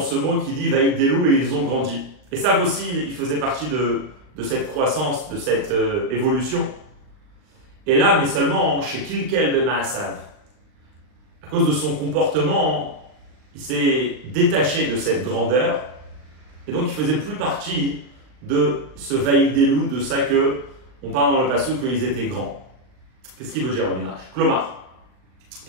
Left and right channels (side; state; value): left; late; 39 ms